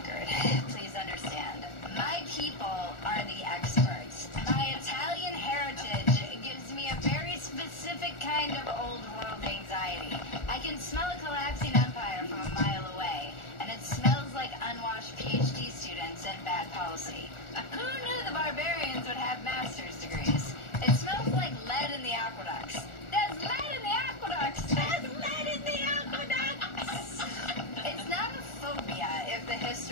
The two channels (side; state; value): right; late; 1.4 ms